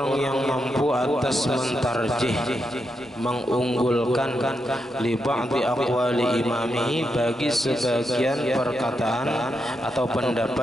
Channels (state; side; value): normal; both; correlation 0.84